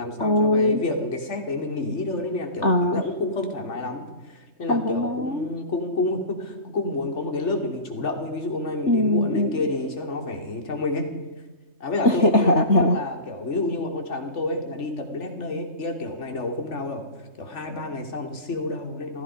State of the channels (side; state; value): right; late; 3.4 ms